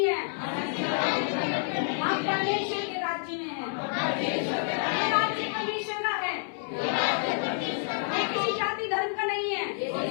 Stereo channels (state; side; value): silent; right; 55 dB below the other